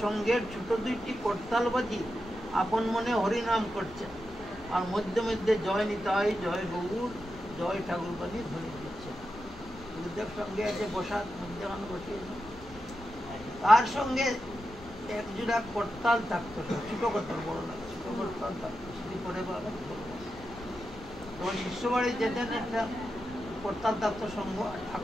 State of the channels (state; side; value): noise; left; rumble, 19 dB below the sound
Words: সঙ্গের ছোট 2টি করতাল বাজি আপন মনে হরিনাম করছেন, আর মধ্যে মধ্যে জয় নিতাই, জয় গৌর, জয় ঠাকুর বাজি ধ্বনি দিচ্ছেন। গুরুদেব সঙ্গে আছে বসার মধ্যখানে বসিয়েছে। তার সঙ্গে এক জোড়া করতাল থাকতো, ছোট করতাল, বড় না, ছোট করতাল থাকতো। সেটি পরে তখন শিষ্য বাড়ি যেতেন, একটা করতাল থাকতো সঙ্গ,